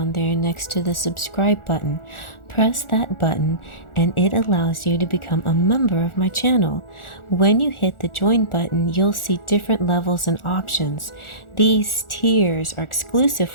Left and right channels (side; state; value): right; late; 1.4 ms